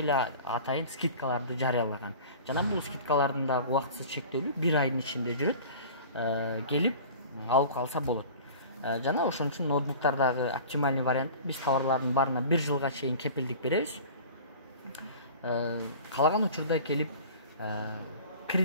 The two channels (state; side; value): inverted; both; correlation -0.40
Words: атайын скидкаларды жарыялаган. Жана бул скидкалардын дагы убактысыз чектелүү 1 айдын ичинде жүрөт. Келип алып калса болот. жана ошон үчүн ноутбуктардагы оптимальный вариант биз товарлардын баарына 1 жылга чейин кепилдик беребиз. Каалаган учурда келип